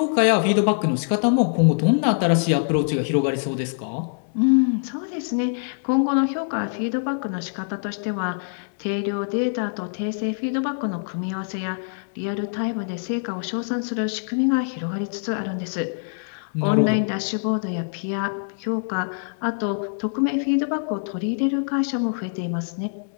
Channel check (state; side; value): silent; right; 63 dB below the other